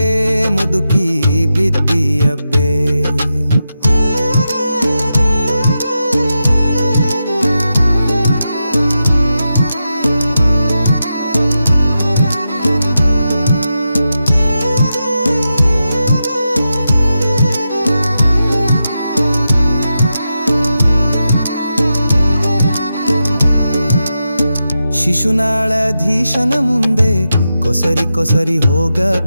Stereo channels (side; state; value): both; inverted; correlation -0.89